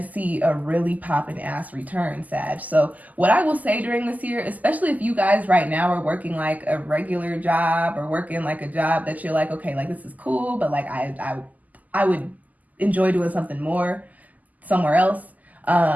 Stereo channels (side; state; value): left; late; 0.079 ms